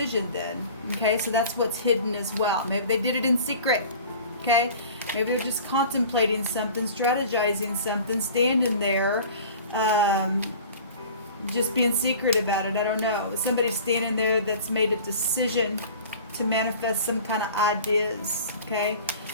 then. Okay, so that's what's hidden as well. Maybe they did it in secret. Okay, maybe they're just contemplating something, strategizing something, standing there, just being secret about it. I don't know. Somebody's standing there that's made a decision to manifest some kind of ideas, okay?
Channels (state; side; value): inverted; both; correlation -0.42